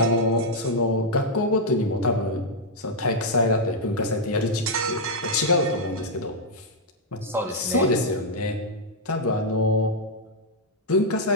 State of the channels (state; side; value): normal; both; correlation -0.04